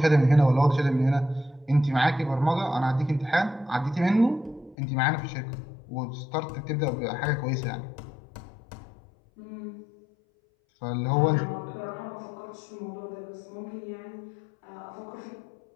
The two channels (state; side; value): drops out; right; at 4.8 s